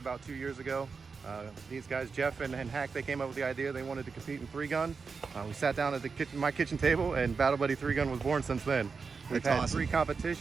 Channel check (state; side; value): quieter; left; 5.1 dB